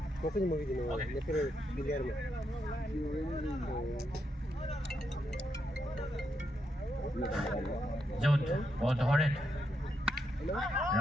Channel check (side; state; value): both; normal; correlation 0.81